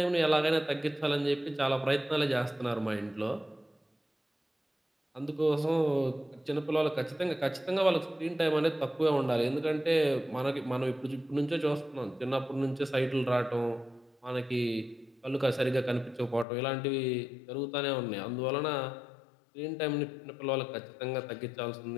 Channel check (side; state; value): right; drops out; at 16.4 s